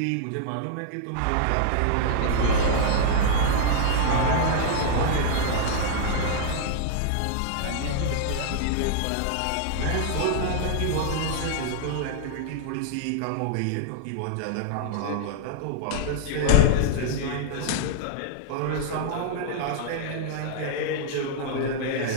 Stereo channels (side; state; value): both; different; correlation -0.01